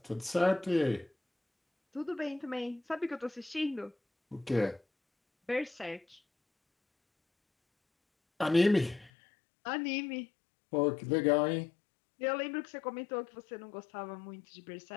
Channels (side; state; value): right; drops out; at 9.1 s